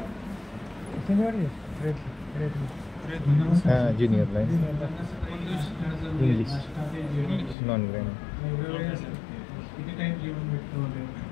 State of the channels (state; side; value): drops out; right; at 7.6 s